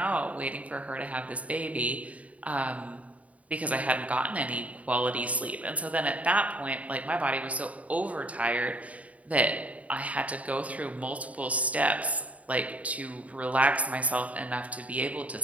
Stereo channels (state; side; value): late; left; 0.068 ms